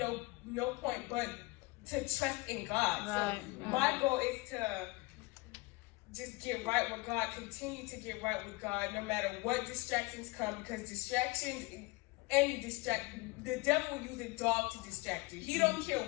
no point but to trust in God. So my goal is to just get right with God, continue to get right with God, no matter what distractions come, because the devil will use a dog to distract you. He don't care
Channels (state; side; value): quieter; right; 23.7 dB